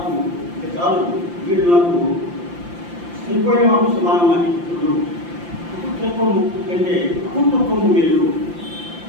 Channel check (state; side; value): late; left; 5.8 ms